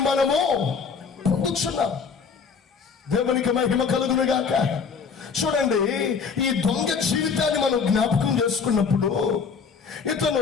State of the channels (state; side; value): quieter; right; 5.7 dB